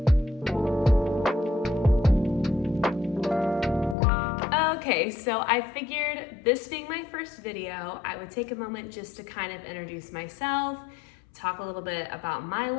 Okay, so I figured this being my first video, I would take a moment just to kind of introduce myself, talk a little bit about my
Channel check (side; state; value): right; drops out; at 4.0 s